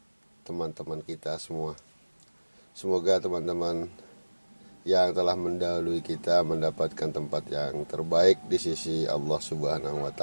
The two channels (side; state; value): both; inverted; correlation -1.00